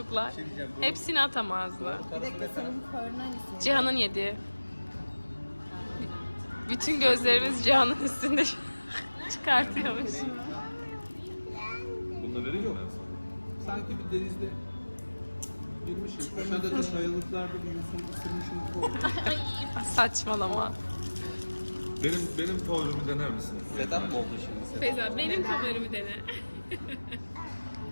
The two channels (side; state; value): both; inverted; correlation -1.00